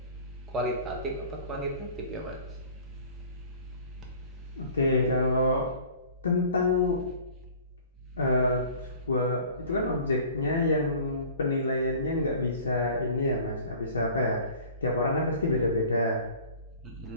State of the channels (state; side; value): inverted; both; correlation -0.46